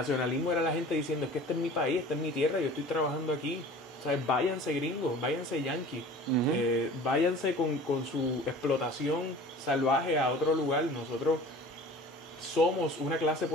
era la gente diciendo, es que este es mi país, esta es mi tierra, yo estoy trabajando aquí, o sea, váyanse gringos, váyanse yanquis, váyanse con su explotación salvaje a otro lugar, nosotros somos una clase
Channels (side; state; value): both; normal; correlation 0.43